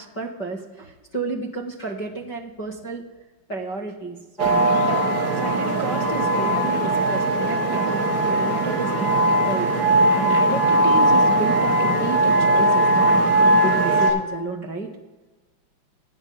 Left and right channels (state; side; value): late; right; 4.8 ms